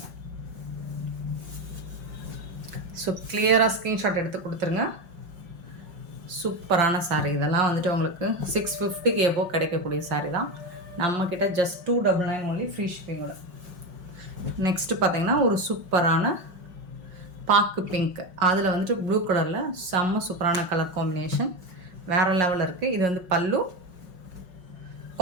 ஸோ கிளியராக ஸ்க்ரீன்ஷாட் எடுத்து கொடுத்துருங்க. சூப்பரான சாரீ. இதெல்லாம் வந்துட்டு உங்களுக்கு 650க்கு எபோ கிடைக்கக்கூடிய சாரீ தான். நம்மக்கிட்ட ஜஸ்ட் 299 ஒன்லி. ஃப்ரீ ஷிப்பிங்கோட. நெக்ஸ்ட்டு பார்த்தீங்கன்னா ஒரு சூப்பரான பாக்கு பிங்க். அதில் வந்துட்டு ப்ளூ கலரில் செம்ம சூப்பரான கலர் காம்பினேஷன். வேறு லெவலில் இருக்குது. இது வந்து பல்லு.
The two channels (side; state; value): left; late; 5.5 ms